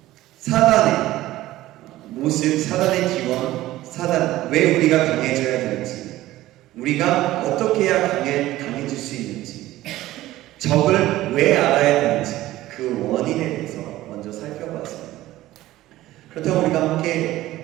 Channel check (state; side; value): quieter; left; 15.9 dB